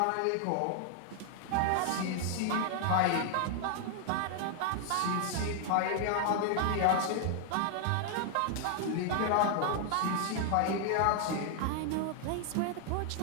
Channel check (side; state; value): both; different; correlation 0.00